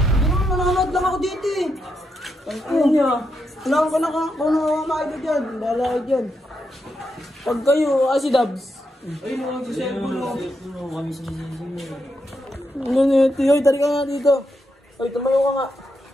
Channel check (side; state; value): both; normal; correlation 0.83